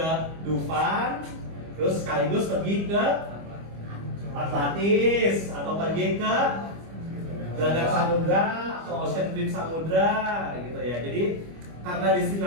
Dufan, terus sekaligus pergi ke Atlantis atau pergi ke Gelagah Samudra atau Ocean Dream Samudra gitu ya. Jadi karena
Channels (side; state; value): left; late; 25 ms